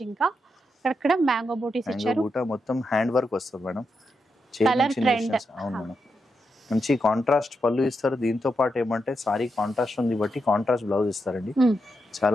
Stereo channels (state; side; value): normal; both; correlation 0.85